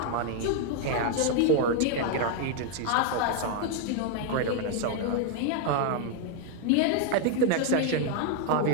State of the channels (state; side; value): different; both; correlation 0.00